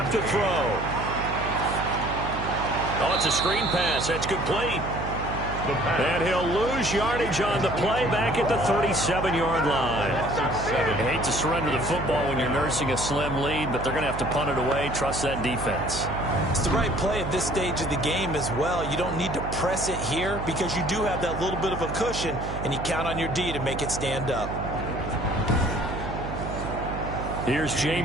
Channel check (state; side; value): noise; right; hum, 6 dB below the sound